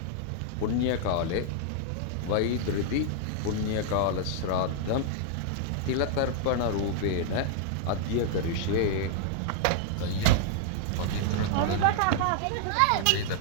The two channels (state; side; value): different; both; correlation -0.01